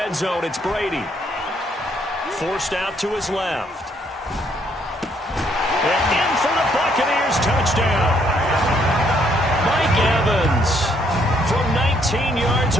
zone, it's Brady. Forced out to his left. And in for the Buccaneers, touchdown. Mike Evans from 19 yards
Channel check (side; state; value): both; normal; correlation 0.69